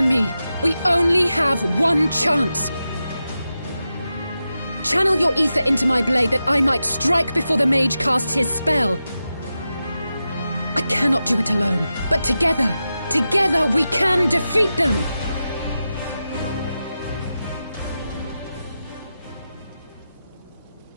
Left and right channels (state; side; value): inverted; both; correlation -0.91